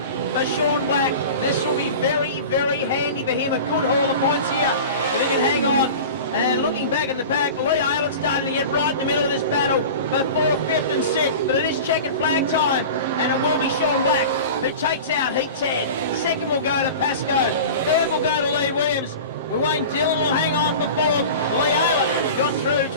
for Sean Black. This will be very, very handy for him. A good haul of points here if he can hang on. And looking back in the pack, Lee Aylett's starting to get right in the middle of this battle for 4th, 5th and 6th. But it is checkered flag time, and it will be Sean Black who takes out heat 10. 2nd will go to Pascoe. 3rd will go to Lee Williams. Wayne Dillon will hang on for 4th. Lee Aylett got through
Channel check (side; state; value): both; inverted; correlation -0.34